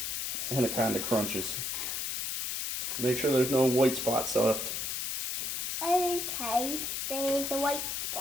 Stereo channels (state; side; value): noise; left; hiss, 2 dB below the sound